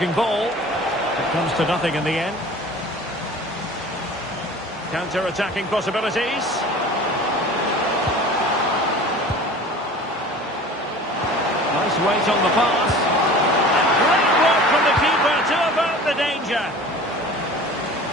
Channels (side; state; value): both; normal; correlation 0.41